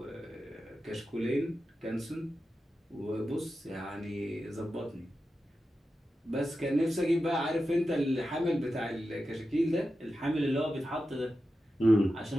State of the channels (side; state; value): both; normal; correlation 0.91